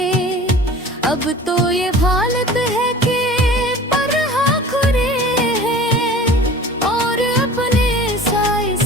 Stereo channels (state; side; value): normal; both; correlation 0.42